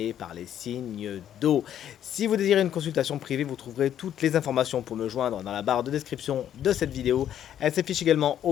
par les signes d'eau. Si vous désirez une consultation privée, vous trouverez toutes les informations pour me joindre dans la barre de description de cette vidéo. Elle s'affiche également au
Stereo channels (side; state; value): right; quieter; 10.4 dB